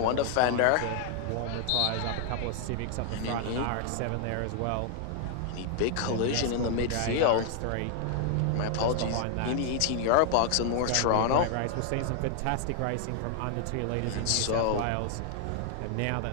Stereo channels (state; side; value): different; both; correlation 0.00